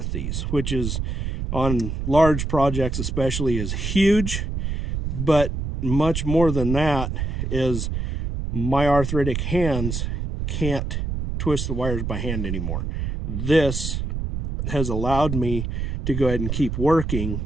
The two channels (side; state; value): right; noise; rumble, 3 dB below the sound